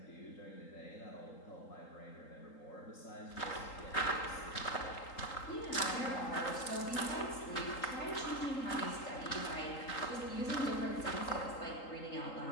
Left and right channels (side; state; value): right; late; 3.8 ms